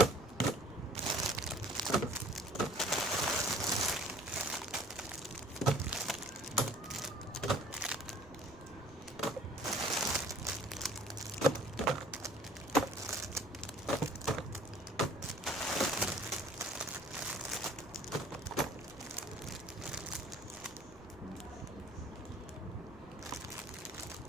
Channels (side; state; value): right; noise; rumble, 21 dB below the sound